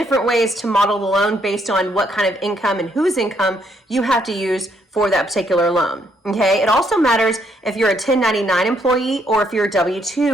ways to model the loan based on what kind of income and whose income you have to use for that particular loan, okay? It also matters if you're a 1099 employee or if you're a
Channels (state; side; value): normal; both; correlation 0.72